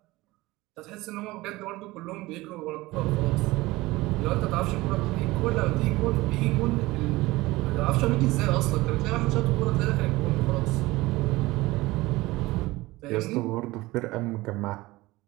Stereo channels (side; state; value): left; quieter; 19.8 dB